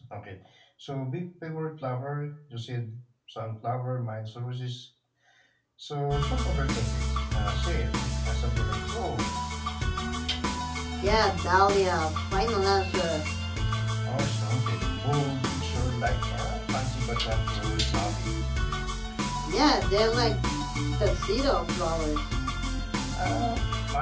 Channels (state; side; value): identical; both; correlation 1.00